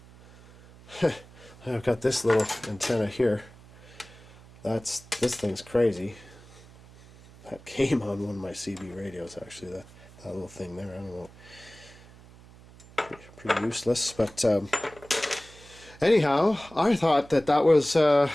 I've got this little antenna here. This thing's crazy. That came on one of my CB radios, actually. That little thing there. I don't know. Pretty useless, but anyhow, I thought that was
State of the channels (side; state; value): right; noise; hum, 22 dB below the sound